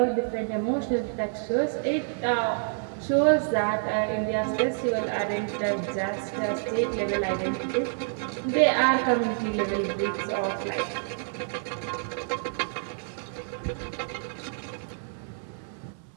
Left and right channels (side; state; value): left; silent; 59 dB below the other